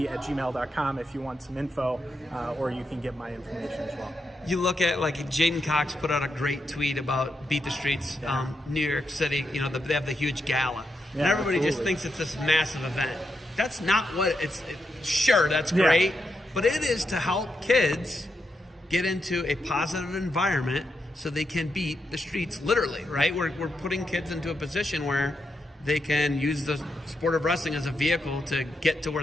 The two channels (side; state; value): both; normal; correlation 0.84